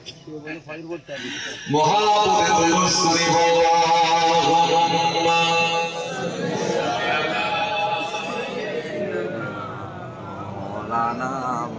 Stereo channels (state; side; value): identical; both; correlation 1.00